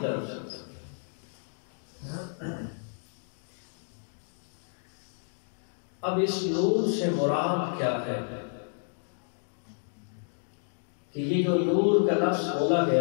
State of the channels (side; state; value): right; silent; digital silence